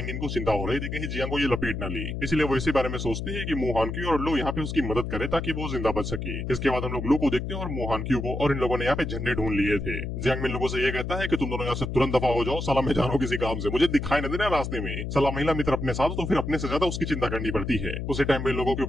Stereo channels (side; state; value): left; noise; hum, 4 dB below the sound